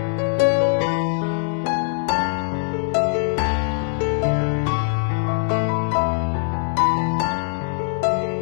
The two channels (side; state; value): right; silent; 64 dB below the other